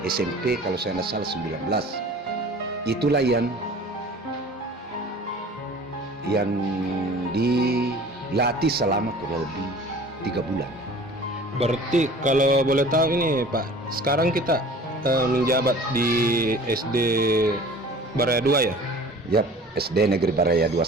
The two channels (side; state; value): both; normal; correlation 0.45